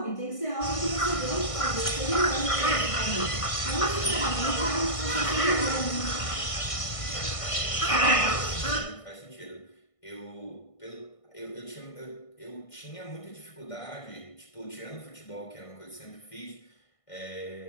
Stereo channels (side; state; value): right; late; 1.5 ms